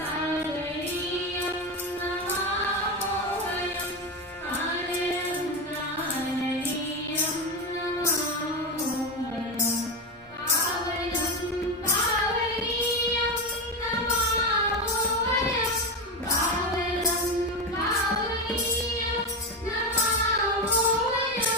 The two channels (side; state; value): both; normal; correlation 0.15